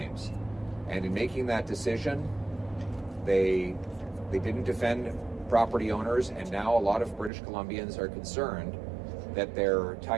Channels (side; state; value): left; drops out; at 7.3 s